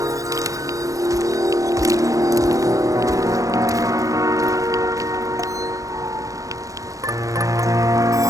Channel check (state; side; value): late; left; 0.16 ms